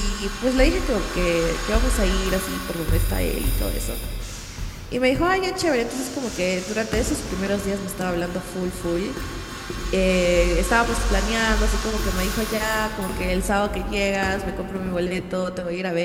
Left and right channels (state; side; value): identical; both; correlation 1.00